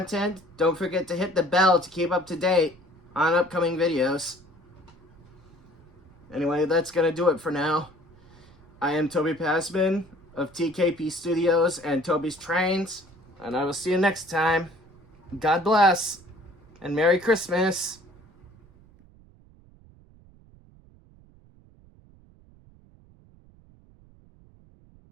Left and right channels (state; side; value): noise; right; rumble, 26 dB below the sound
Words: don't forget to hit the bell to keep up to date on upcoming videos. Anyway, that's going to do it for now. I am Toby Passman of TKP Studios and Toby's Trains, and I will see you next time. God bless, and Merry Christmas.